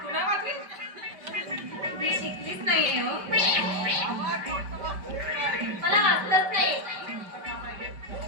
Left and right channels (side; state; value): left; late; 5.2 ms